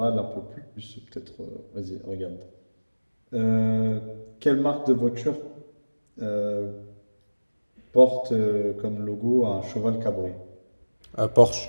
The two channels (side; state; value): both; inverted; correlation -1.00